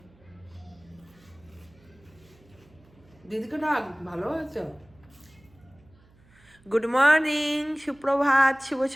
দিদিকে ডাক, ভালো হয়েছে। গুড মর্নিং, সুপ্রভাত, শুভ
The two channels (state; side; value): noise; right; hum, 29 dB below the sound